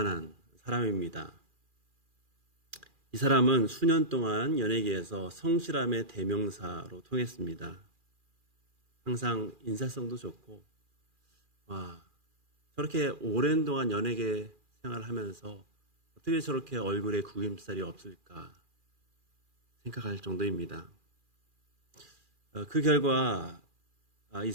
사람입니다. 이 사람은 수년 동안 연예계에서 성실함의 대명사로 통했습니다. 항상 인사성도 좋고, 저렇게 오랜 동안 연예계 생활을 하면서 어떻게 저렇게 얼굴에 구김살이 없을까 생각할 정도입니다. 그 결과 이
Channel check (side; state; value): left; late; 2.4 ms